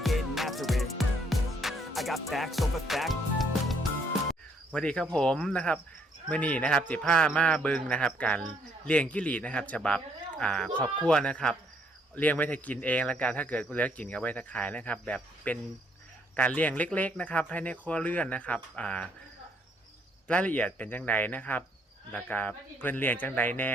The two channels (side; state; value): both; normal; correlation 0.69